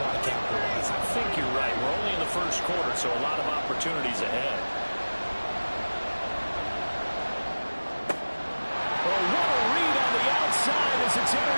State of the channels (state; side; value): inverted; both; correlation -1.00